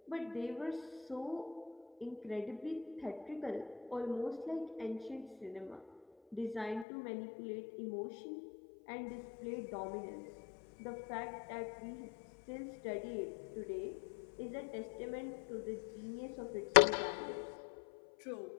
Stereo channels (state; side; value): drops out; right; at 6.9 s